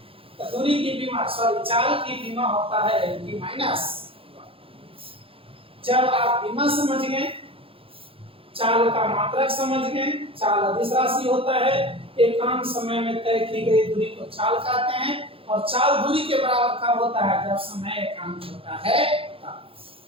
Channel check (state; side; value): late; left; 0.27 ms